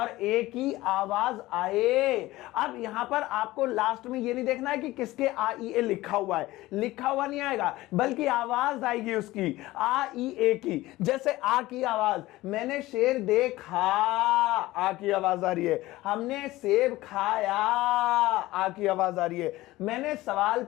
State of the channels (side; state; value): right; quieter; 17.9 dB